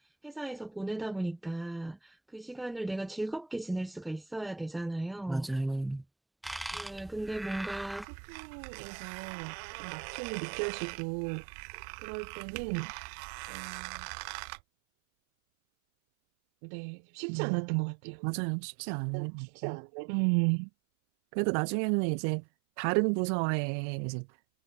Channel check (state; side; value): drops out; left; at 8.1 s